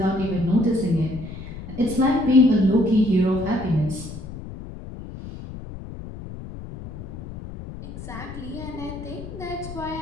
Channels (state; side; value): noise; left; rumble, 11 dB below the sound